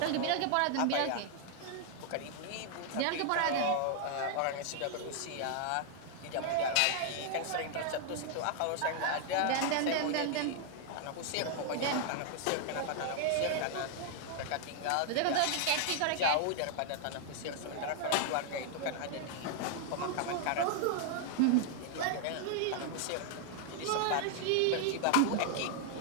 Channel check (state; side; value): different; both; correlation 0.00